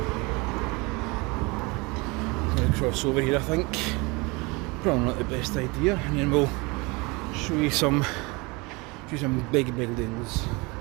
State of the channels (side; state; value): left; quieter; 26.2 dB